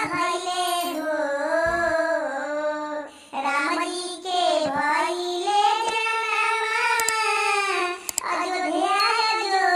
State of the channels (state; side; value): identical; both; correlation 1.00